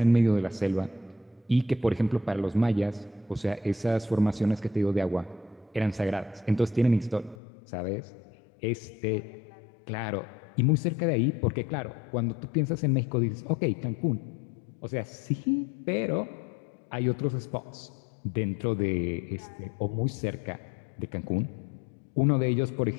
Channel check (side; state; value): right; drops out; at 7.4 s